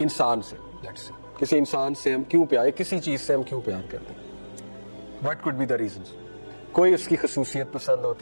سے, کسی انسان سے ہم کیوں پیار, کسی چیز سے ہم کیوں پیار کرتے ہیں, what could be the reasons. کوئی اس کی خصوصیت پسند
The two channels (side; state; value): both; inverted; correlation -1.00